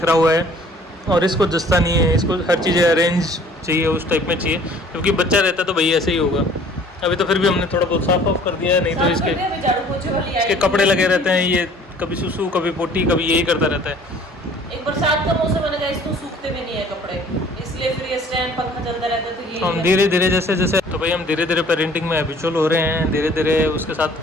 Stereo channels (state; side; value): normal; both; correlation 0.53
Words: हुआ है, और इसको जस्ता नहीं है, इसको हर चीज़ अरेंज चाहिए, उस टाइप में चाहिए, क्योंकि बच्चा रहता तो भाई ऐसे ही होगा। अभी तो फिर भी हमने थोड़ा बहुत साफ ऑफ कर दिया है, नहीं तो इसके कपड़े लगे रहते हैं, ये कभी सुसु कभी पोटी कभी यही करता रहता है। एक बरसात का मौसम है ना गाइस, तो सूखते भी नहीं है कपड़े, इसलिए फिर ये स्टैंड पंखा चलता रहता है, तो ये हम धीरे धीरे जैसे जैसे तो भाई हम धीरे धीरे पेरेंटिंग में हैबिचुअल हो रहे हैं, धीरे धीरे उसके